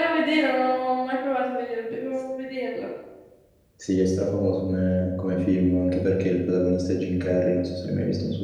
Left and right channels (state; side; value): identical; both; correlation 1.00